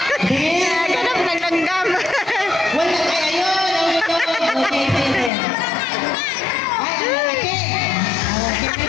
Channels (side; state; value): right; drops out; at 5.3 s